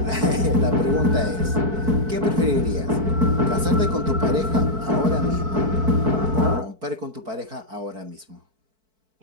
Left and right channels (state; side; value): late; left; 4.6 ms